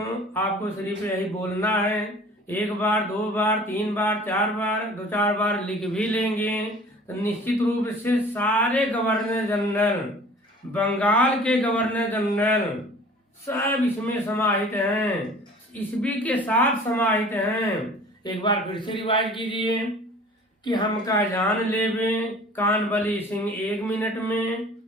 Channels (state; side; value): normal; both; correlation 0.47